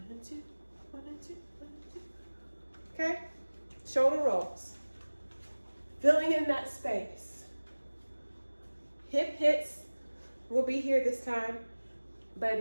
and 2, 1 and 2, 1 and 2. Okay, shoulder rolls, filling in that space. Hip hits will be here this time, but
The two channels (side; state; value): both; inverted; correlation -1.00